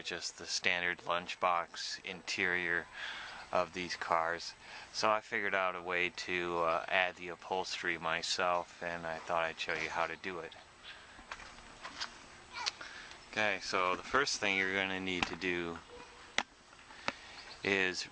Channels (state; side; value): identical; both; correlation 1.00